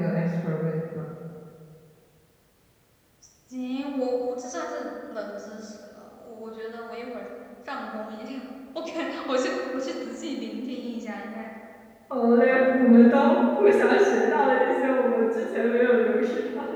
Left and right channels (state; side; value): identical; both; correlation 1.00